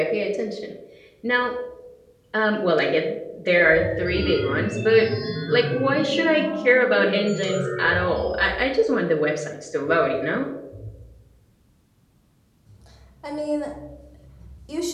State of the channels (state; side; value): identical; both; correlation 1.00